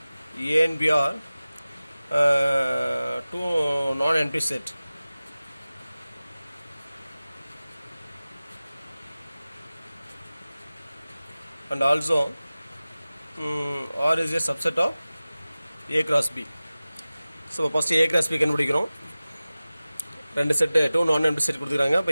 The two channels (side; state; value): both; inverted; correlation -0.97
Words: A and B are two non-empty set. And also R is a subset of A cross B. So first A cross B கண்டுபிடிக்கிறோம். ரெண்டு set two non empty set கொடுத்துருக்காங்க.